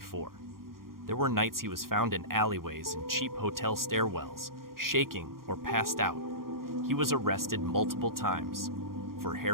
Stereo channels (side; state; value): left; late; 0.92 ms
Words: There were nights he was found in alleyways and cheap hotel stairwells, shaking or passed out. He was arrested multiple times, for